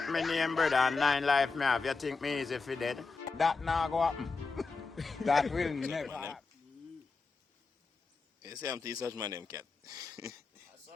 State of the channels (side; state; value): right; quieter; 4.3 dB